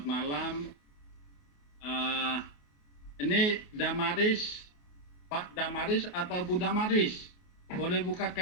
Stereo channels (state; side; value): late; right; 28 ms